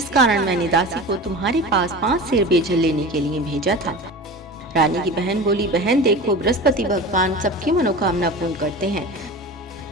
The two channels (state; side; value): normal; both; correlation 0.32